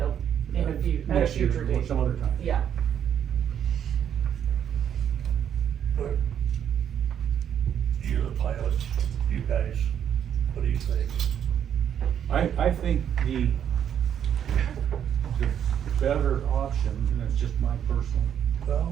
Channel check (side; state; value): left; quieter; 9.1 dB